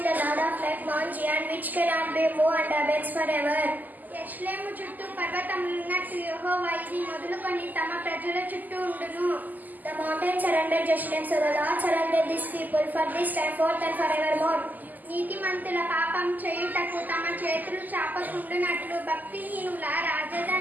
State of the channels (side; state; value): left; late; 0.083 ms